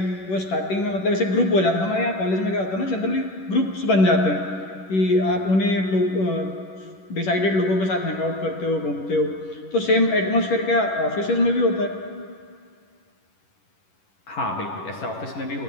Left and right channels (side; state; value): right; late; 11 ms